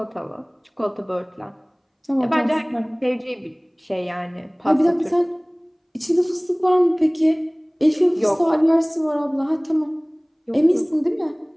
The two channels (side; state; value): both; identical; correlation 1.00